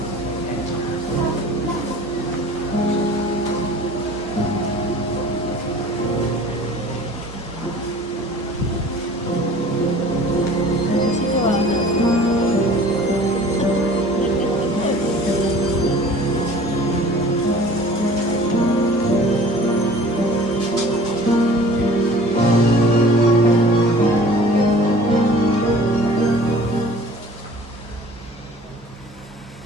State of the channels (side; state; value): both; normal; correlation 0.46